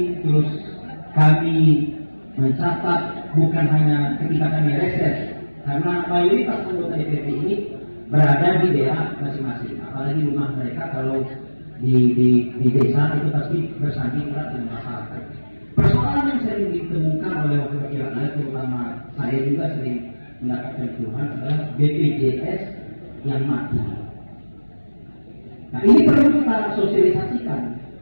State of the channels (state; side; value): inverted; both; correlation -1.00